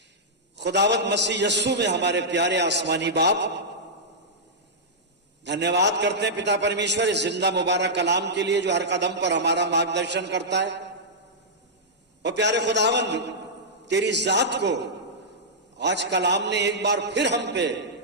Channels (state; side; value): normal; both; correlation -0.10